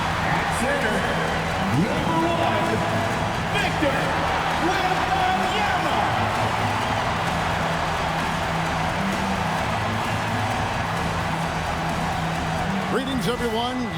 At center. Number 1. Victor Wembanyama. Greetings, everyone.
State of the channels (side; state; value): both; identical; correlation 1.00